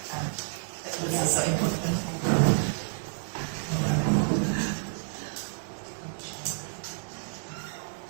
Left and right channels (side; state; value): left; silent; digital silence